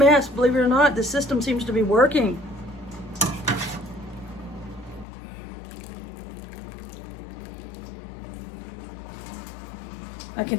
believe it or not. The system seems to be working. I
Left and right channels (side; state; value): right; drops out; at 5.1 s